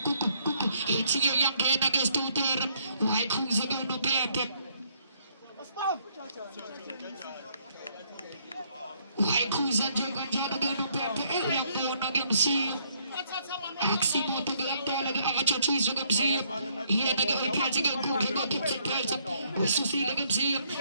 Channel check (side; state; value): both; inverted; correlation -0.68